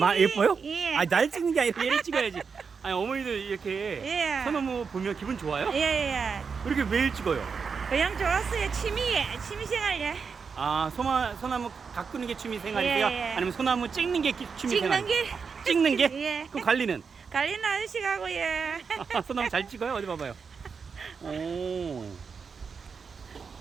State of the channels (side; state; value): left; quieter; 5.6 dB